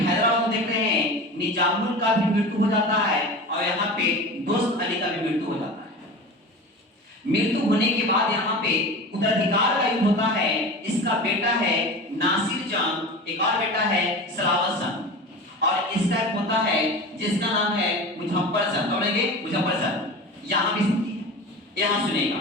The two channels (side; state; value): both; normal; correlation 0.32